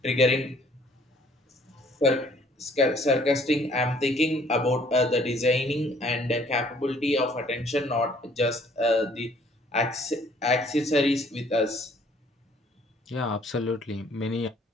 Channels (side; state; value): both; normal; correlation 0.59